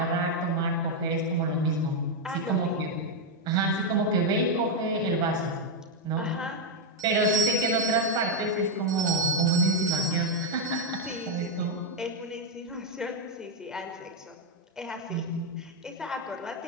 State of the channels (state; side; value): normal; both; correlation 0.00